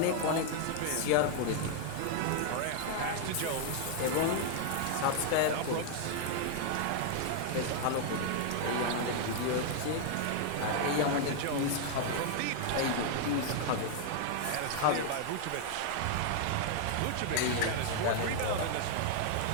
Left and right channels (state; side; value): different; both; correlation 0.00